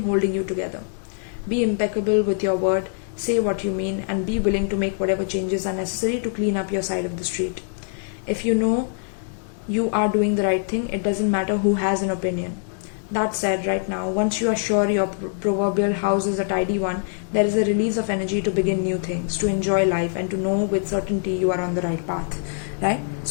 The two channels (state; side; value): silent; right; digital silence